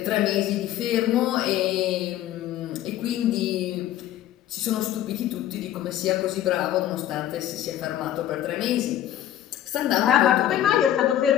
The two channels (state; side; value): quieter; right; 12.1 dB